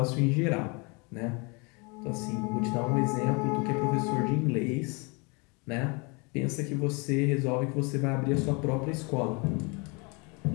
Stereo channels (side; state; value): right; quieter; 30.5 dB